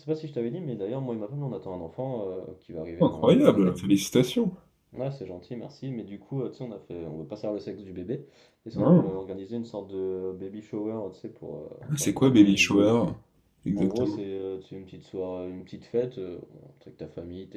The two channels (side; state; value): both; identical; correlation 1.00